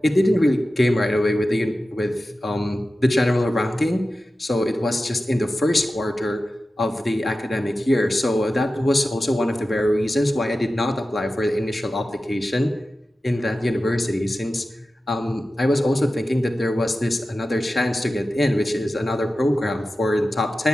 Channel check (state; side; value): normal; both; correlation 0.94